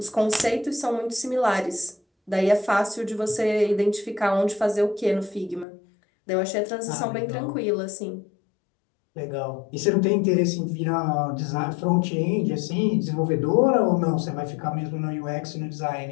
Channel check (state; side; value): drops out; right; at 5.7 s